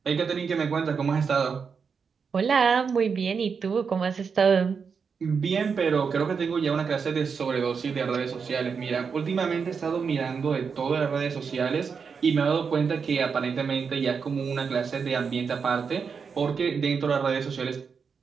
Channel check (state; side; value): quieter; left; 5.9 dB